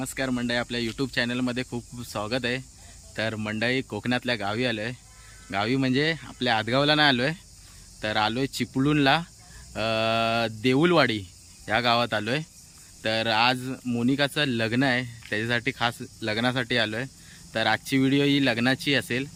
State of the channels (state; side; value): identical; both; correlation 1.00